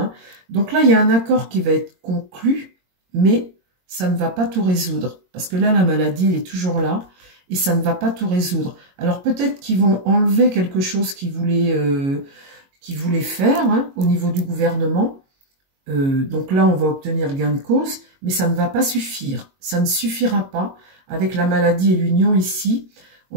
Donc là, il y a un accord qui va être conclu, mais ça ne va pas tout résoudre. Parce que là, la maladie, elle est toujours là et ça ne va pas tout résoudre. Alors peut-être qu'ils vont enlever quelque chose qu'ils voulaient faire hein, au niveau du gouvernement. Donc là, on va obtenir gain de cause, mais ça ne va pas suffire. Ça ne suffira pas avec la maladie et l'union ici.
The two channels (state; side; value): late; left; 22 ms